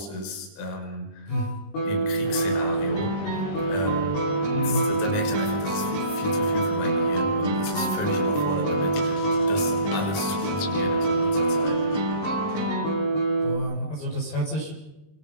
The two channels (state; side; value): late; right; 20 ms